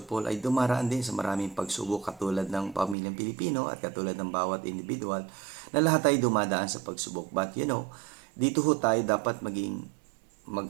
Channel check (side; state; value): left; drops out; at 3.0 s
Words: Paul ay dumaraan din sa maraming pagsubok katulad ng pamilyang Pilipino at katulad ng bawat individual na lahat ay dumadaan sa pagsubok. But dito ho tayo dapat maging